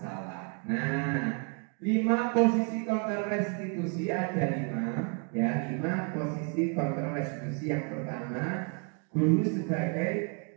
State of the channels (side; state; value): left; quieter; 37.9 dB